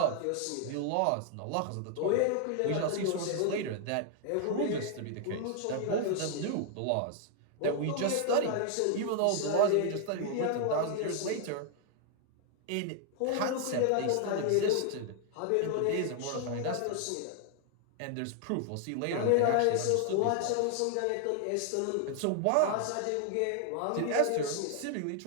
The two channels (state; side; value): different; both; correlation 0.00